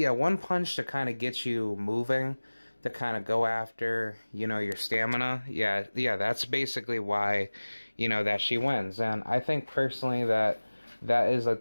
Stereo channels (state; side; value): inverted; both; correlation -1.00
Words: punch to kind of get you moving, to kind of go after, you know, your stamina. Yeah, that's basically why, you know, that she wins. And I think personally that is like